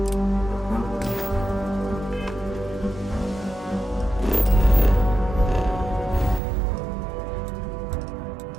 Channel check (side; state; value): left; drops out; at 6.4 s